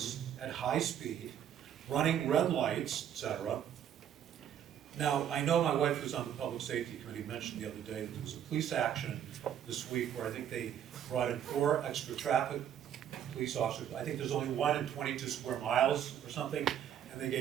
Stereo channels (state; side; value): quieter; left; 9.7 dB